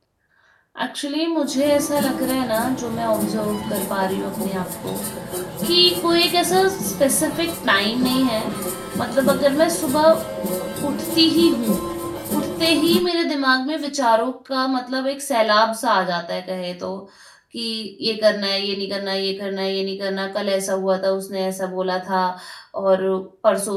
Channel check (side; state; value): both; identical; correlation 1.00